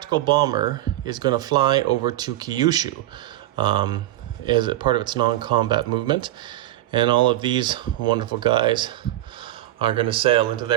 bomber is going to fly over to Kyushu as a part of its non-combat movement. And all of these wonderful guys are going to sail into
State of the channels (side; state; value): left; quieter; 14.9 dB